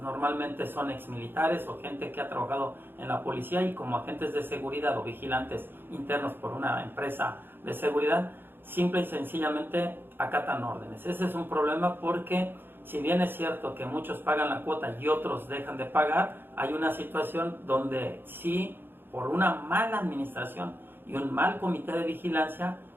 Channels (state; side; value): late; left; 0.10 ms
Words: son exmilitares o gente que ha trabajado en la policía, y como agentes de seguridad o vigilantes internos por una empresa de seguridad, simple y sencillamente acatan órdenes. Ese es un problema, porque si bien es cierto que muchos pagan la cuota y otros dejan de pagar, hay una situación donde sí, por una mala administración y un mal comité de vigilancia